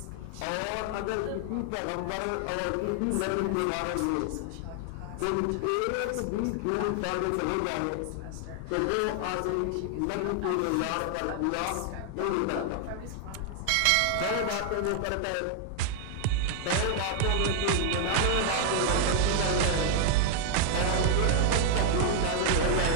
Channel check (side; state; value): both; different; correlation 0.00